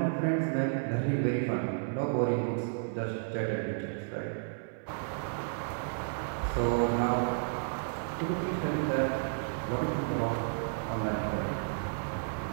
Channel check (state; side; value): silent; left; 56 dB below the other